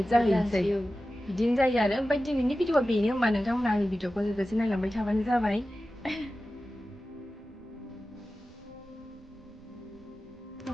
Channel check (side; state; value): right; noise; rumble, 25 dB below the sound